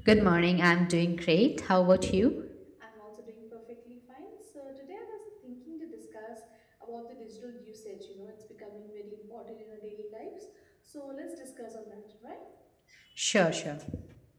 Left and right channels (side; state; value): both; identical; correlation 1.00